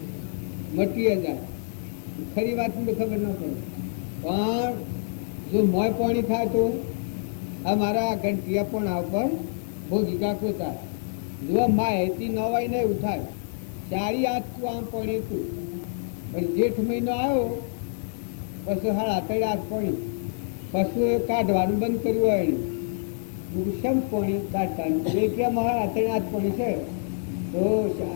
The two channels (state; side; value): silent; right; digital silence